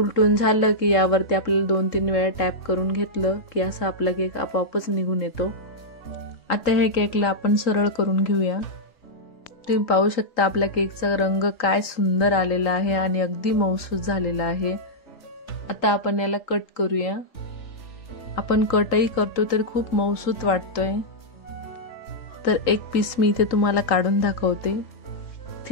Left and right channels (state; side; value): late; right; 3.8 ms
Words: झालं की यावरती आपल्याला 2-3 वेळा टॅप करून घेतलं की असा आपला केक आपोआपच निघून येतो। आता हे केकला आपण सरळ करून घेऊया। तुम्ही पाहू शकता आपल्या केकचा रंग काय सुंदर आलेला आहे आणि अगदी मऊसूत झालेला आहे। आता आपण याला कट करूया। आपण कटही करतो तर खूप मऊसूत वाटतोय। तर एक पीस मी इथे तुम्हाला काढून दाखवते।